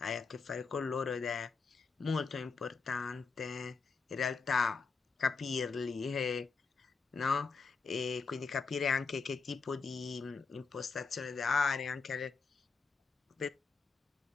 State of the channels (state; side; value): quieter; right; 4.8 dB